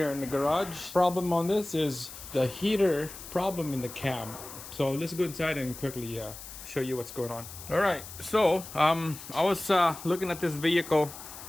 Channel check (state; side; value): noise; left; hiss, 13 dB below the sound